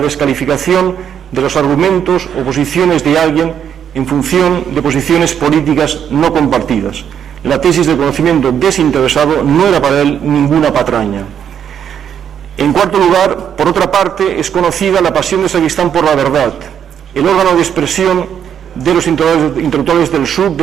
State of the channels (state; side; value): quieter; left; 8.7 dB